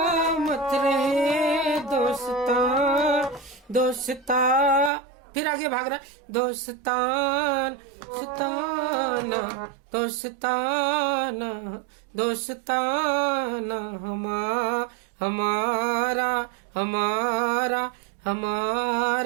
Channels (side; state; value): left; drops out; at 4.9 s